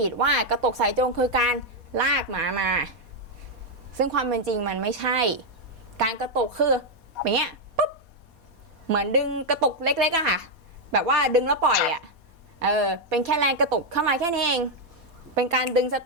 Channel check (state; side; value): late; left; 4.2 ms